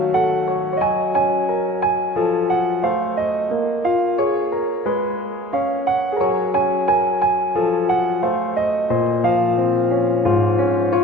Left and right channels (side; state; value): both; normal; correlation 0.48